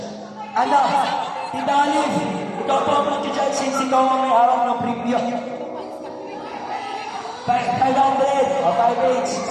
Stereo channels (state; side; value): identical; both; correlation 1.00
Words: Ano? Tita Alif, ikaw po ang mag-judge since ikaw ang may hawak ng preview. 500 o 5 each.